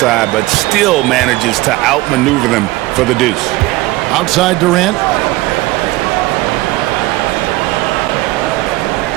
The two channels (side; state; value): left; quieter; 19.4 dB